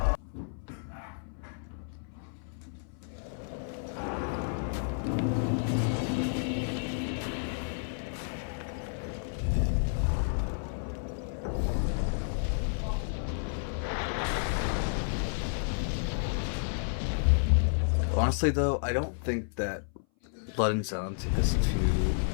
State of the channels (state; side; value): silent; right; 57 dB below the other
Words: Honestly, though, I don't think that Blood and Zallen is